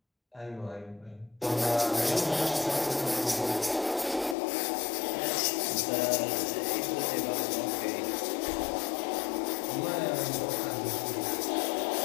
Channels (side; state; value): right; drops out; at 4.4 s